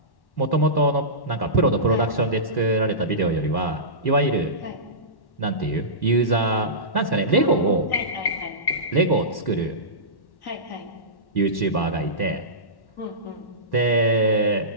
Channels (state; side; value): late; right; 1.1 ms